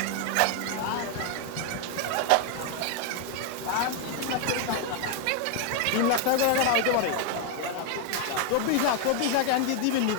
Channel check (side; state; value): both; different; correlation 0.00